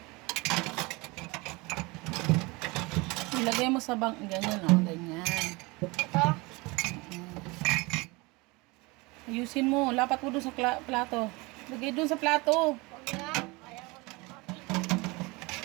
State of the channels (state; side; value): quieter; left; 25.0 dB